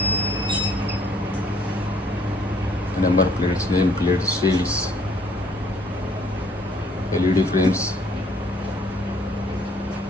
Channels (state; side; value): normal; both; correlation 0.62